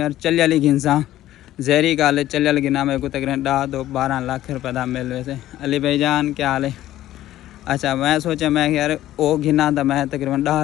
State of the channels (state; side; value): quieter; right; 13.9 dB